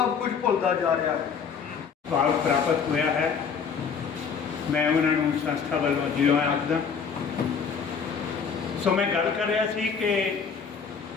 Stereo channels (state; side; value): quieter; right; 6.2 dB